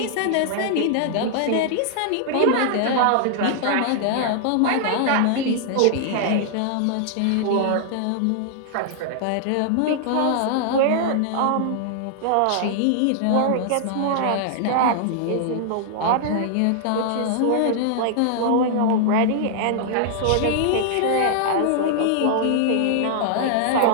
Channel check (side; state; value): both; different; correlation -0.01